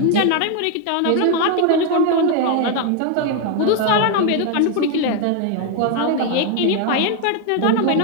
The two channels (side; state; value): both; different; correlation 0.01